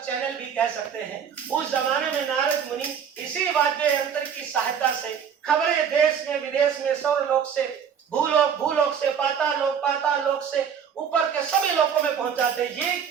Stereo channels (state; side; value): quieter; left; 7.6 dB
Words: चैनल भी कह सकते हैं, उस जमाने में नारद मुनि इसी वाद्य यंत्र की सहायता से खबरें देश में विदेश में, स्वर्गलोक से भूलोक, भूलोक से पाताल लोक से ऊपर के सभी लोकों में पहुंचाते हैं। ये